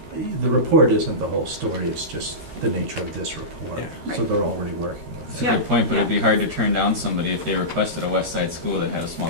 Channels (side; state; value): left; late; 13 ms